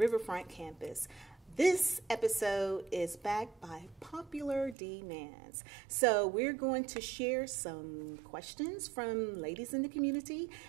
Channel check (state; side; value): drops out; left; at 4.8 s